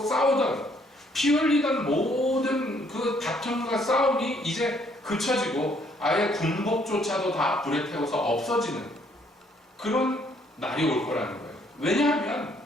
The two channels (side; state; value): both; normal; correlation 0.66